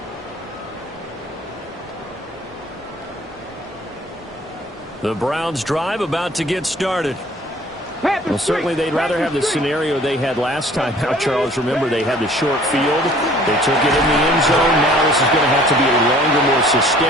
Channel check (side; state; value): both; normal; correlation 0.53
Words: The Browns drive about to get started. Well, certainly they'd rather have the scenario they had last time out, Charles. Remember, they had the short field. They took it in the end zone. Now this is going to have to be a longer, more